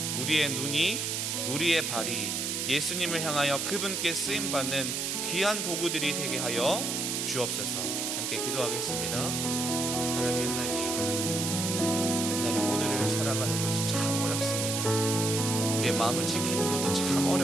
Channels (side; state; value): right; noise; hiss, 1 dB below the sound